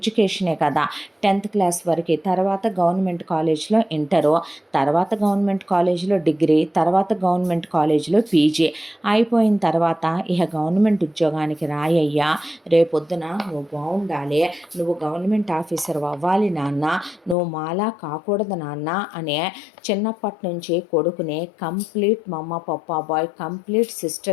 కదా 10th క్లాస్ వరకు, తర్వాత గవర్నమెంట్ కాలేజ్లో ఇంటరు, తర్వాత గవర్నమెంట్ కాలేజ్లో డిగ్రీ, తర్వాత గవర్నమెంట్ కాలేజీలో పీజీ అయిపోయిన తర్వాత ఇక గవర్నమెంట్ ఉద్యోగానికి రాయ్యా, రేపొద్దున నువ్వు బాగుండాలి, నువ్వు గవర్నమెంట్ ఆఫీసర్ అవ్వాలి నాన్న, నువ్వు మాలా కాకూడదు నాన్న అనే చిన్నప్పటి నుంచి కొడుకుని complete mamma papa boy, complete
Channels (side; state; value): right; drops out; at 17.4 s